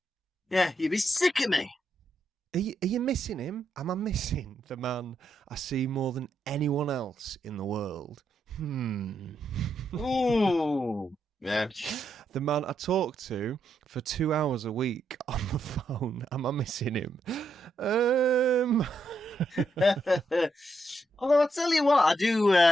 yeah, you'd be sick of me. Are you missing him? Am I missing the man I see more than anyone else in the world? Ooh, Yeah. The man I talk to for 2 hours a week on the phone. Am I missing him? Although I tell you what, I do.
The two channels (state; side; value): normal; both; correlation 0.80